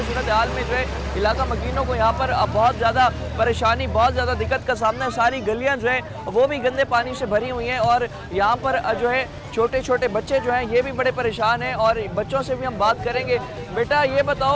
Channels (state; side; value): identical; both; correlation 1.00